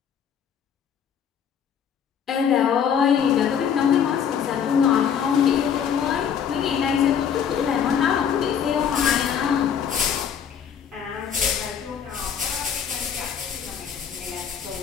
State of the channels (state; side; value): quieter; right; 7.9 dB